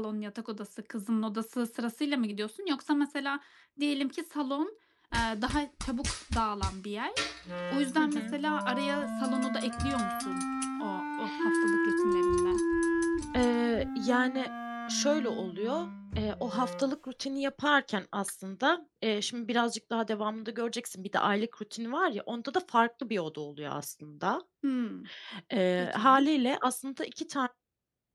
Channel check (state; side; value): identical; both; correlation 1.00